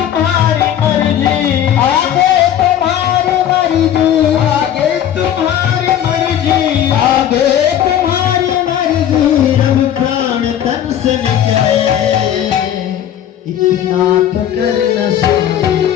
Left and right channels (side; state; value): right; quieter; 10.4 dB